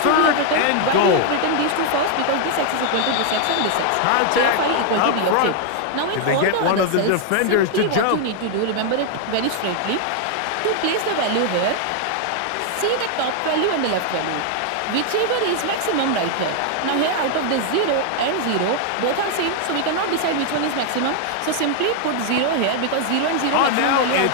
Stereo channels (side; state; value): both; different; correlation 0.00